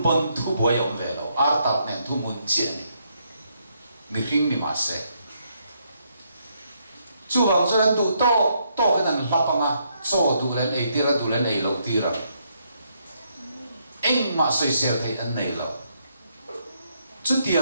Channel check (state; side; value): inverted; both; correlation -0.75